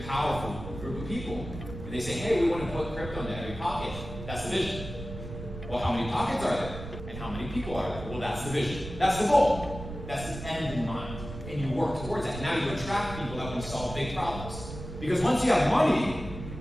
powerful group of people, and they say, hey, we want to put crypto into every pocket. That's the vision. Well, how many pockets are there? And how many people are there? Well, that's the vision. That's the goal. That's the end in mind. And you work towards that. Now you attract people that want to solve big problems. Because once you have money,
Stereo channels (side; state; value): right; noise; rumble, 10 dB below the sound